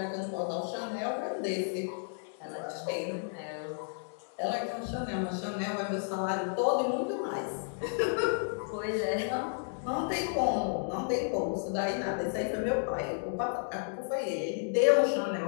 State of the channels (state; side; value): silent; right; digital silence